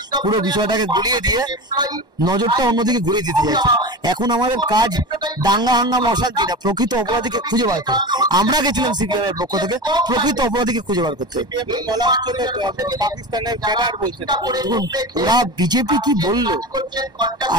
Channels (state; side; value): late; left; 1.1 ms